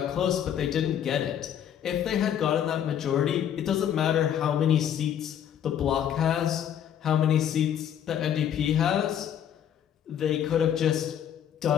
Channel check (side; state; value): right; quieter; 9.6 dB